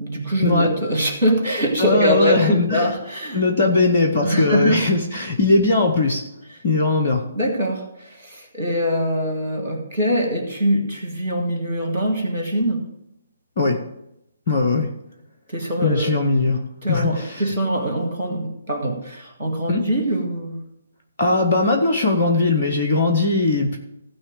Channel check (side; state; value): both; inverted; correlation -0.60